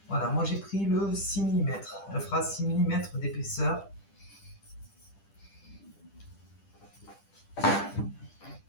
Voilà, moi j'ai pris le 6 mm. Elle fera 6 mm d'épaisseur.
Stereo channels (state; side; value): late; right; 10 ms